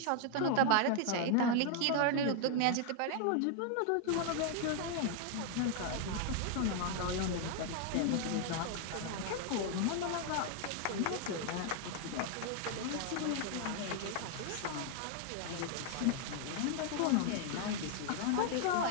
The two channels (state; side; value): different; both; correlation 0.00